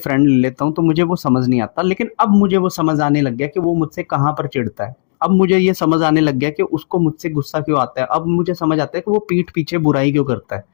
ले लेता हूँ, तो मुझे वो समझ नहीं आता। लेकिन अब मुझे वो समझ आने लग गया कि वो मुझसे कहाँ पर चिढ़ता है। अब मुझे ये समझ आने लग गया कि उसको मुझसे गुस्सा क्यों आता है। अब मुझे समझ आता है कि वो पीठ पीछे बुराई क्यों करता है,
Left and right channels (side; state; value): right; silent; digital silence